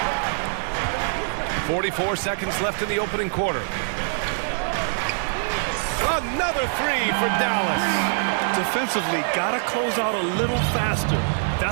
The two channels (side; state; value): left; silent; 63 dB below the other